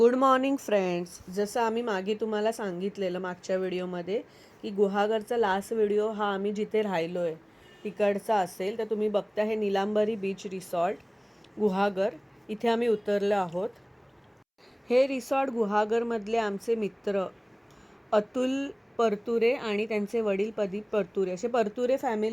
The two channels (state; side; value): identical; both; correlation 1.00